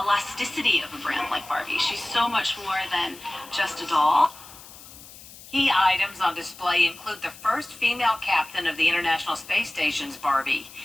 of a brand like Barbie. She's so much more than just a doll. Key items on display include the first female captain of the International Space Station's Barbie.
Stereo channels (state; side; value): noise; left; hiss, 18 dB below the sound